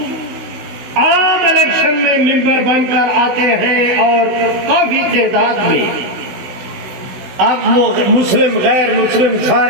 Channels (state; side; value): late; left; 16 ms